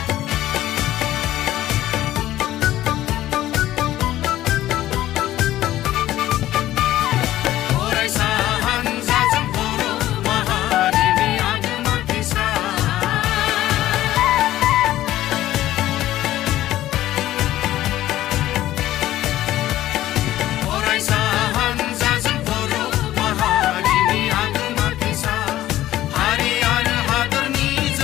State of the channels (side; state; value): right; quieter; 14.3 dB